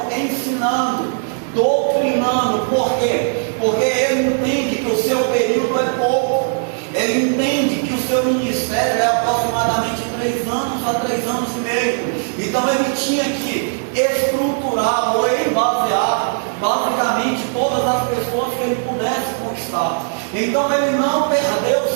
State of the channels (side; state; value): left; silent; digital silence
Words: ensinando, doutrinando. Por quê? Porque Ele entende que o seu período é pouco. Ele entende que o seu ministério é aproximadamente 3 anos a 3 anos e meio. Então Ele tinha que estruturar ou embasear basicamente todas as pessoas que Ele pudesse conquistar. Então Ele não perdeu